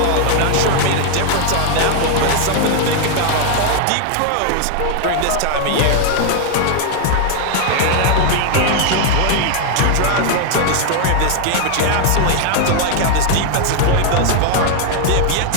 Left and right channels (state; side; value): different; both; correlation 0.00